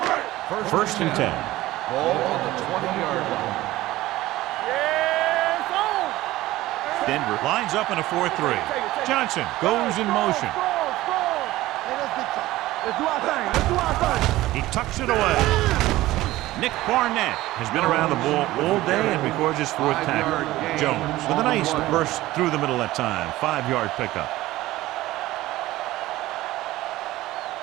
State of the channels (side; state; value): left; quieter; 16.9 dB